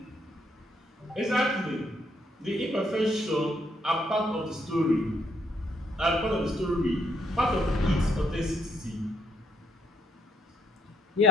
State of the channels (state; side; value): normal; both; correlation 0.71